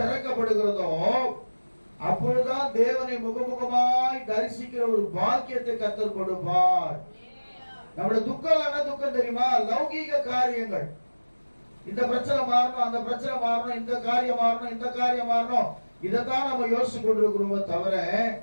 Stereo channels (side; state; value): both; inverted; correlation -1.00